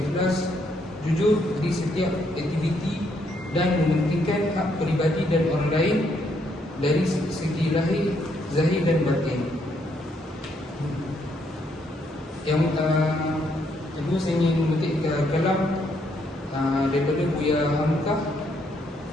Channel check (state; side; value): normal; both; correlation 0.73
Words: jujur di setiap aktiviti dan mementingkan hak peribadi dan orang lain dari segi lahir, zahir dan batin. Yang kedua, saya ingin memetik kalam daripada Buya Hamkah